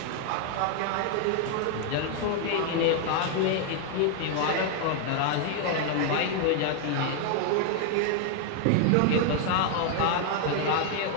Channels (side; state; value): both; different; correlation 0.00